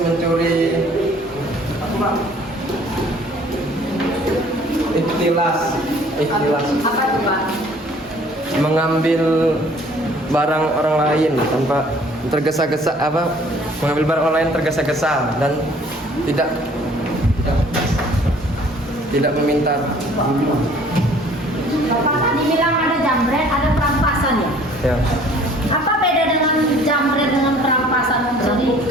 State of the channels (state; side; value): normal; both; correlation 0.55